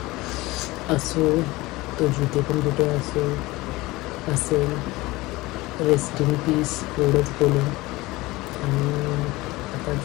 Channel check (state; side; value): quieter; right; 20.5 dB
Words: असो तो जिथे पण कुठे असेल रेस्ट इन पीस एवढंच बोलून. आणि आता